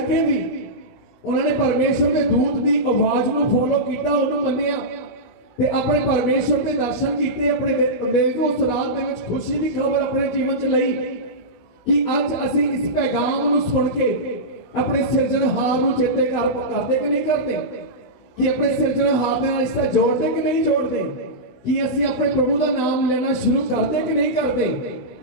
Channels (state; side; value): late; right; 17 ms